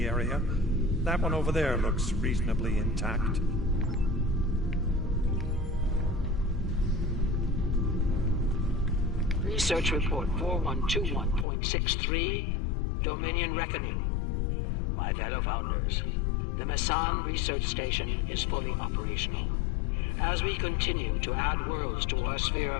area. That one over there looks reasonably intact. Research report 4121.63, Dominion Reckoning. My fellow Founders, the Mesan research station is fully operational. As we continue to add worlds to our sphere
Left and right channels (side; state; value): right; drops out; at 11.5 s